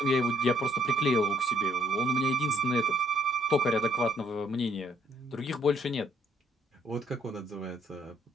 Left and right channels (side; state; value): both; normal; correlation 0.66